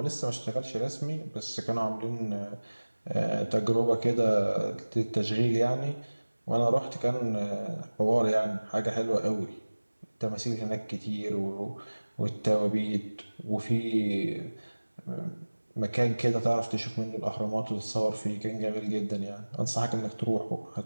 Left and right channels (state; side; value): inverted; both; correlation -1.00